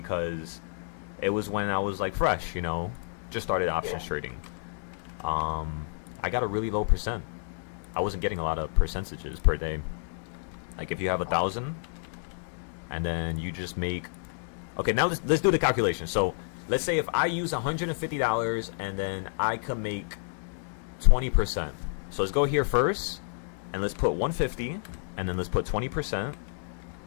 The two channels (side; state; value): right; silent; digital silence